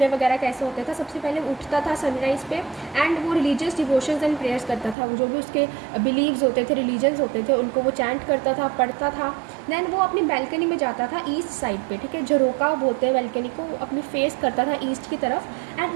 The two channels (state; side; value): drops out; left; at 5.0 s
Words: वगैरह कैसे होता था। सबसे पहले उठता था सनराइज़ पे एंड वो रिलीजियस डिवोशंस एंड प्रेयर्स करता था। वो जो भी उसके बिलीव्स होते थे, रिलीजन्स होते थे, उनको वो चैंट करता था, पढ़ता था। देन वो अपनी बैल्कनी में जाता था ईस्ट साइड पे, ठीक है, झरोका बोलते हैं बैल्कनी को, वो अपनी फेस करता था ईस्ट की तरफ। एंड